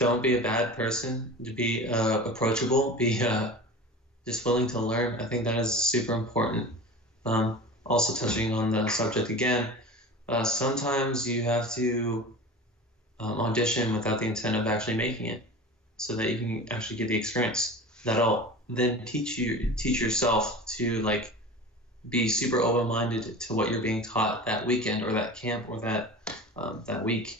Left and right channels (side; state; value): both; normal; correlation 0.34